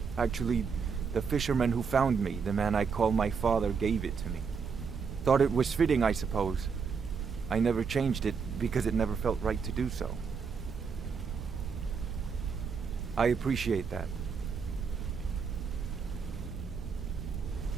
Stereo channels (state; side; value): quieter; left; 5.8 dB